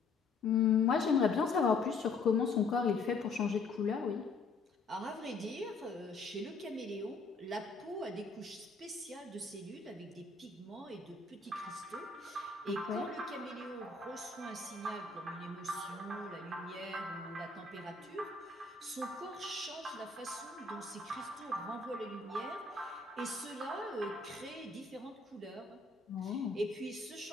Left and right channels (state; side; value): quieter; right; 4.0 dB